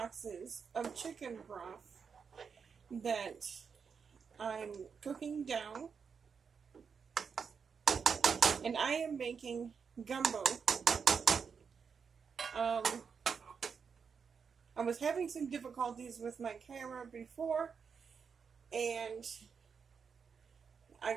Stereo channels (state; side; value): quieter; left; 6.1 dB